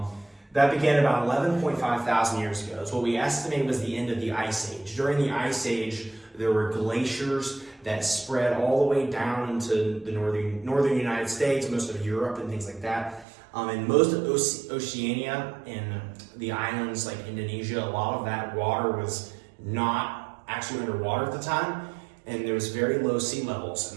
That began about 11.5 thousand years ago. It's what we estimate was the end of the Ice Age. During the Ice Age, there were glaciers that spread all the way down into the northern United States, most of Europe and things like that. And most of Oceania and the islands like Indonesia, a lot of that water was not actually underwater at the time, and there was very low sea levels,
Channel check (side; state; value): left; drops out; at 13.2 s